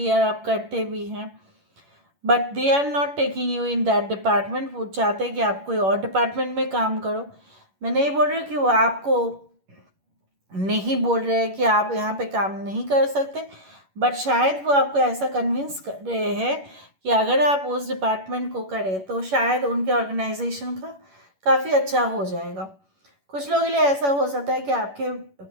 और आप करते भी हैं, but they are not taking you in that department. वो चाहते हैं कि आप कोई और डिपार्टमेंट में काम करो। मैं नहीं बोल रही हूँ कि वो आपको नहीं बोल रहे हैं कि आप यहाँ पे काम नहीं कर सकते, बट शायद वो आपको ऐसा कन्विंस कर रहे हैं कि अगर आप उस डिपार्टमेंट को करें तो शायद उनके ऑर्गेनाइजेशन का काफ़ी अच्छा हो जाएगा। कुछ लोगों के लिए ऐसा हो सकता है कि आपके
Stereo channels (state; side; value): late; left; 11 ms